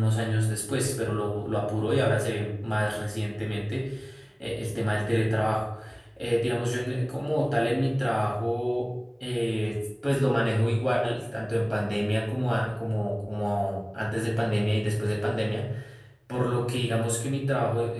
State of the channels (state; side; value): identical; both; correlation 1.00